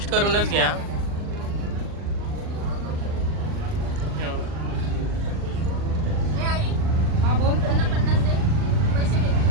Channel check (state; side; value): late; left; 39 ms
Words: करूनच घ्या. हा बोल. त्यांना 50 दे, पैसे घे.